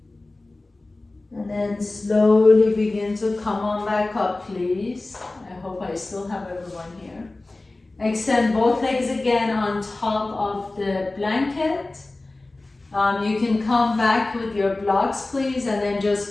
And then slowly begin to come on back up, please. I hope I still have everyone here. Extend both legs again on top of the blanket. You can come back with your blocks, please, and then just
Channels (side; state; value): right; quieter; 3.0 dB